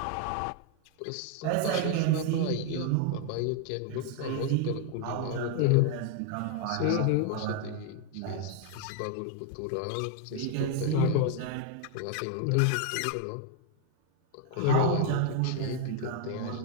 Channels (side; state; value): both; different; correlation 0.01